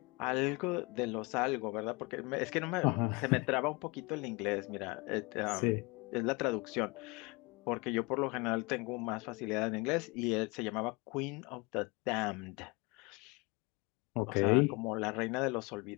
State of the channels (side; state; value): right; quieter; 27.1 dB